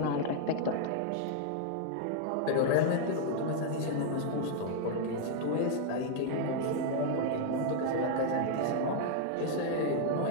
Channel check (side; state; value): both; different; correlation 0.00